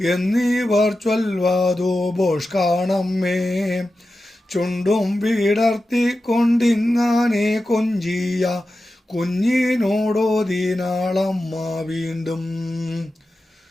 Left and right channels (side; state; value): both; normal; correlation 0.92